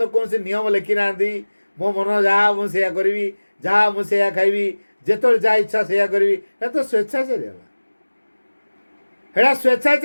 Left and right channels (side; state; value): both; inverted; correlation -1.00